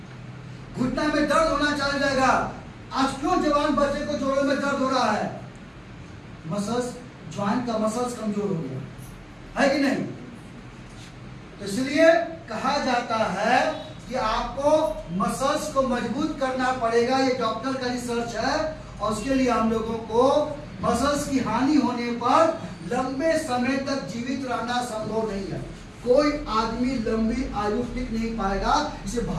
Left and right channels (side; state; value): both; identical; correlation 1.00